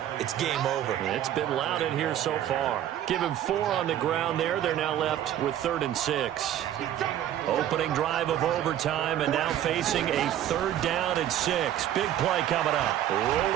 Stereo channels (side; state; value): left; quieter; 11.4 dB